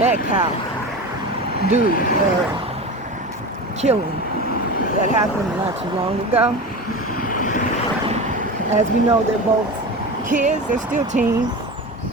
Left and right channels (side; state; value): both; normal; correlation 0.28